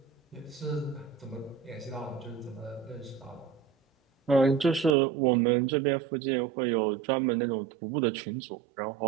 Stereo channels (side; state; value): left; drops out; at 5.0 s